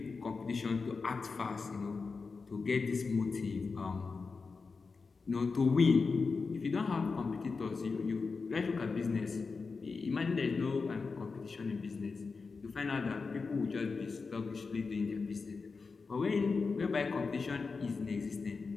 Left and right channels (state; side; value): quieter; right; 4.6 dB